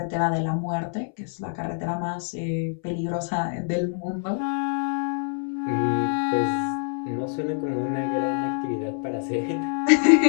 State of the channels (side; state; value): right; silent; 61 dB below the other